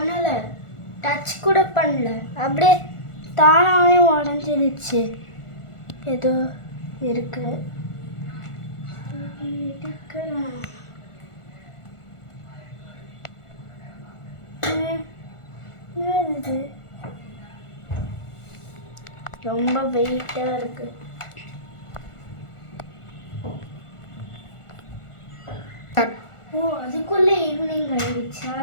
டச் கூட பண்ணல, அப்படியே தானாகவே உடஞ்சிடுச்சு. ஏதோ இருக்கு. இது ரொம்ப வெயிட்டாக இருக்கு. அதுக்குள்ளே ஈவினிங் ஆயிடுச்சா?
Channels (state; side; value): late; right; 1.4 ms